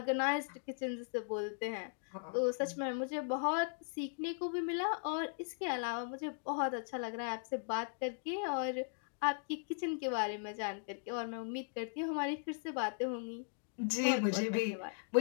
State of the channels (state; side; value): silent; right; digital silence